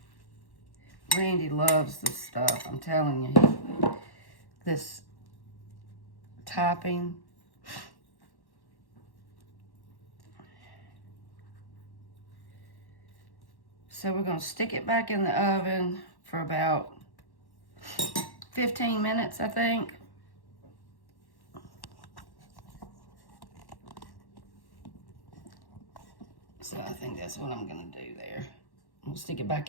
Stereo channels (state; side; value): late; right; 1.1 ms